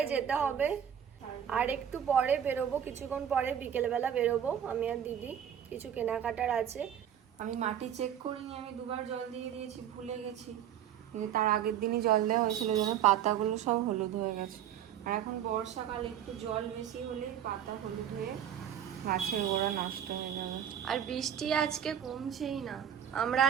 যেতে হবে। আর একটু পরে বেরোবো, কিছুক্ষণ পরে বিকেলবেলা বেরোবো আমি আর দিদি, কিছু কেনাকাটার আছে। আমি মাটি চেক করিনি, আমি দুবার জল দিয়ে দিয়েছি, ভুলে গেছি। কিন্তু তার আগের দিনই জল দেওয়া হয়েছিল, যেন পাতাগুলো সব হলুদ হয়ে গেছে। আর এখন বর্ষাকালে একটু জল বেশি হলেই পাতা হলুদ হয়ে গাছের গোড়া নষ্ট হয়ে যাবে। আর বৃষ্টি আজকে কমছেই না, আমরা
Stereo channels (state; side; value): quieter; left; 9.6 dB